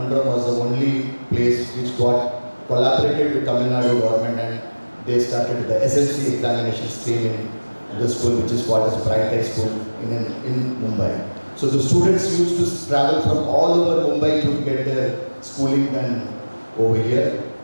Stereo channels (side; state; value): both; inverted; correlation -1.00